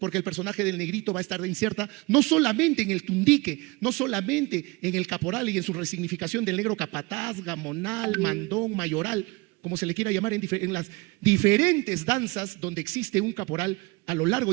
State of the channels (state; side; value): quieter; left; 24.6 dB